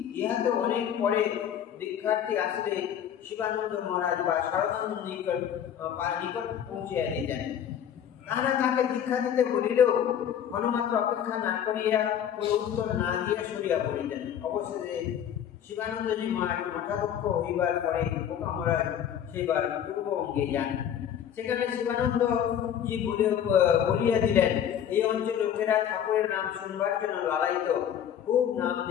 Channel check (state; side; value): quieter; right; 9.4 dB